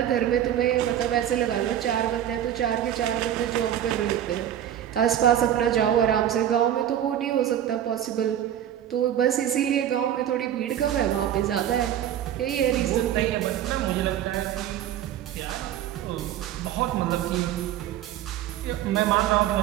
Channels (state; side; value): quieter; left; 10.9 dB